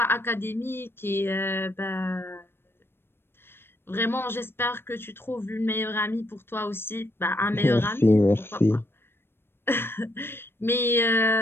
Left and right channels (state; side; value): late; right; 0.11 ms